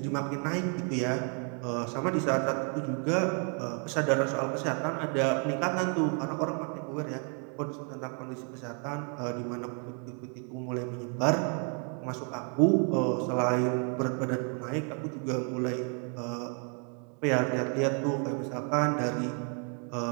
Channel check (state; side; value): quieter; left; 40.0 dB